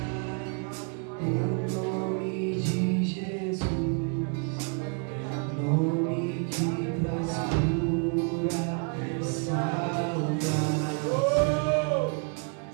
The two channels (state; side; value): quieter; left; 39.6 dB